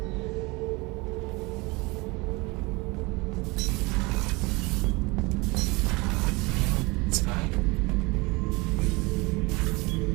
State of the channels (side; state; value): left; quieter; 25.1 dB